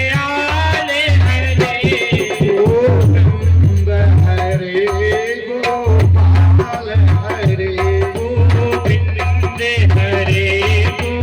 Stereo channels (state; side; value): identical; both; correlation 1.00